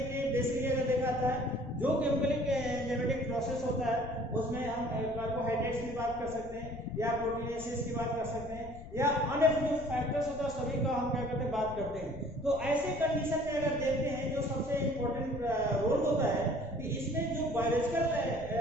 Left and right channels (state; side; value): noise; left; rumble, 14 dB below the sound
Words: लिए बेसिकली अगर देखा जाता है जो केमिकलिक एंजाइमेटिक प्रोसेस होता है उसमें हम कार्बोहाइड्रेट्स की बात कर सकते हैं या प्रोटीनेसिस की बात कर सकते हैं या अन्य जो फैक्टर्स होता है सभी का हम क्या करते हैं बात करते हैं। तो ऐसे कंडीशन में अगर देखते हैं जो सबसे इम्पोर्टेंट रोल होता है कि इसमें जो बायोलॉजिकल